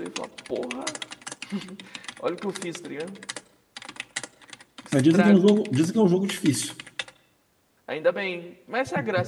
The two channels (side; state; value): both; identical; correlation 1.00